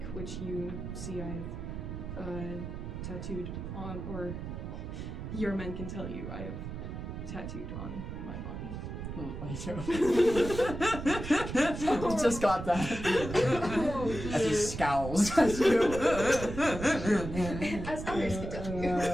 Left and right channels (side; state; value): right; noise; rumble, 7 dB below the sound